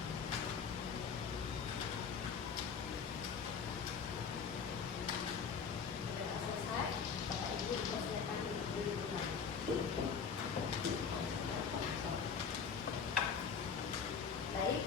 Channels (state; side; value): quieter; right; 6.2 dB